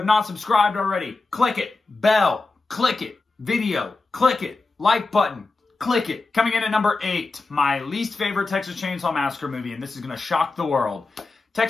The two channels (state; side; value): quieter; right; 3.6 dB